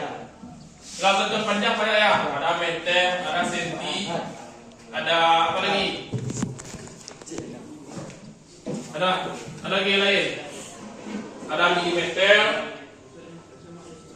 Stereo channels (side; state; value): both; identical; correlation 1.00